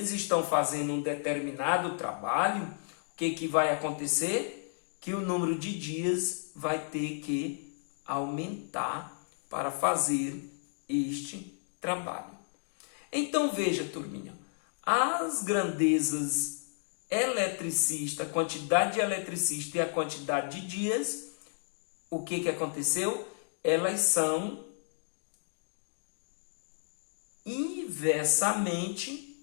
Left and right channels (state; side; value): silent; right; digital silence